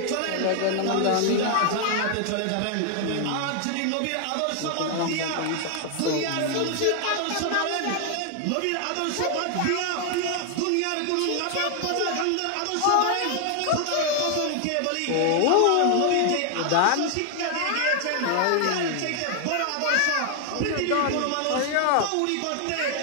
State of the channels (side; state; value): both; different; correlation 0.00